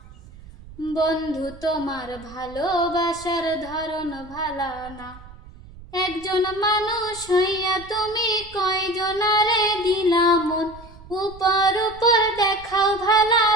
বন্ধু তোমার ভালোবাসার ধরন ভালা না। একজন মানুষ হইয়া তুমি কয়জনারে দিলা মন, উপর উপর দেখাও ভালা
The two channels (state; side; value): noise; right; rumble, 19 dB below the sound